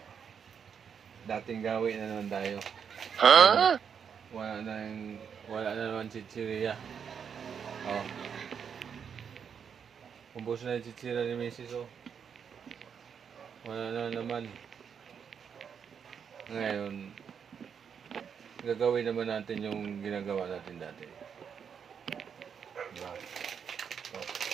Dating gawin na naman tayo. Wala na naman chichirya. Oh. Ubos na yung chichirya ni Mrs. Oh. Wala na naman. Ngayon, gagawin naman natin yung ginagawa natin dati. Diba? Ito.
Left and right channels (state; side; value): quieter; left; 7.2 dB